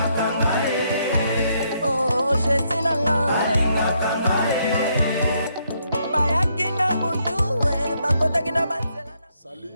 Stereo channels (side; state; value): both; inverted; correlation -0.74